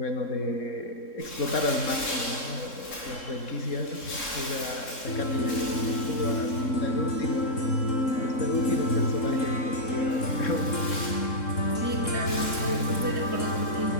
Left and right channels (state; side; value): late; right; 3.7 ms